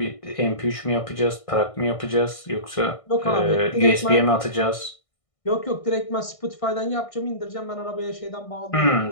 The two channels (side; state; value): right; late; 1.6 ms